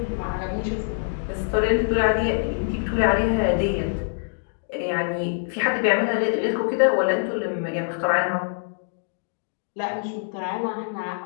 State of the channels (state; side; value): silent; right; digital silence